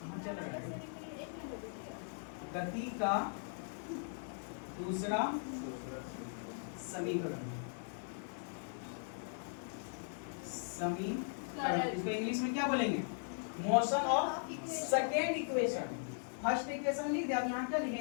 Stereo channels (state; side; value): silent; right; 52 dB below the other